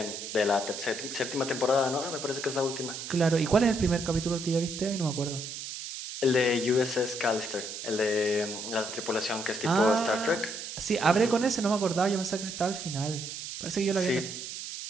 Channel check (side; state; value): right; noise; hiss, 8 dB below the sound